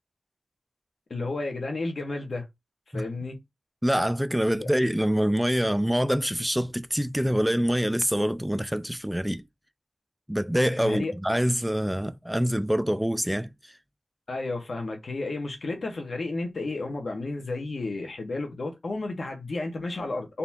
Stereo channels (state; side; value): normal; both; correlation 0.98